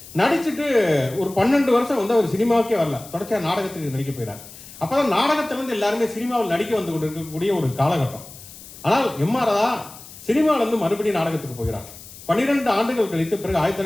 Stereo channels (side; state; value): left; noise; hiss, 17 dB below the sound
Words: நடிச்சுட்டு ஒரு 12 வருஷம் வந்து அவர் சினிமாவுக்கே வரல, தொடர்ச்சியாக நாடகத்துக்கு நடிக்க போயிறார். அப்பதான் நாடகத்திலிருந்து எல்லாருமே சினிமாவில் நடிக்க வந்து கொண்டு இருக்கக்கூடிய ஒரு காலகட்டம். ஆனால் எம்.ஆர். தான் சினிமாவில இருந்து மறுபடியும் நாடகத்துக்கு போகிறார். 12 ஆண்டுகள் கழித்து பிறகு